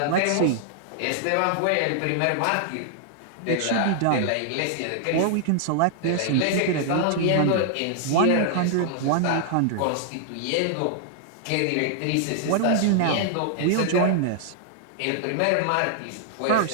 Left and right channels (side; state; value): both; different; correlation -0.01